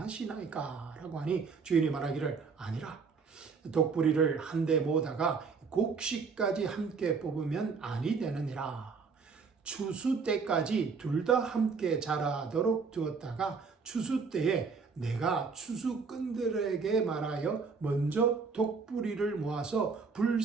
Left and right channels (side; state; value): left; quieter; 5.1 dB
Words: 라고 하니 주인이 말하기를, 아니라 독뿌리를 한데 모으다가 곡식까지 함께 뽑으면 아니 되느니라. 추수 때까지 둘 다 함께 자라도록 두었다가 추수 때에 내가 추수꾼들에게 말하여 먼저 독뿌리를 모아서